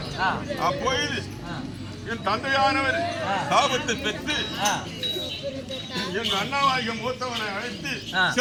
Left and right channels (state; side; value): identical; both; correlation 1.00